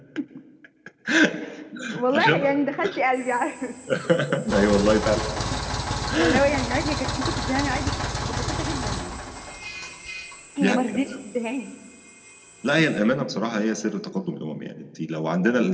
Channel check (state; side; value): identical; both; correlation 1.00